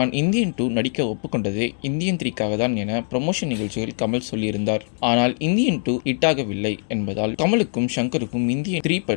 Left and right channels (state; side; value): silent; right; 64 dB below the other